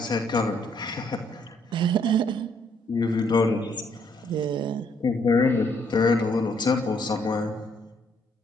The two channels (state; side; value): normal; both; correlation 0.69